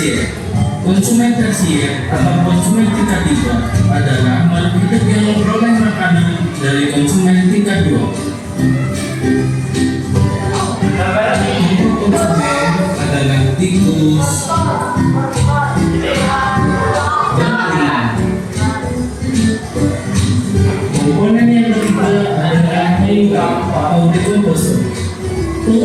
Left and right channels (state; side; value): identical; both; correlation 1.00